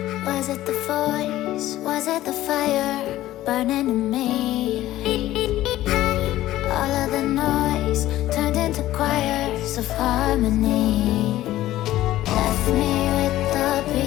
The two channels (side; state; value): right; quieter; 14.8 dB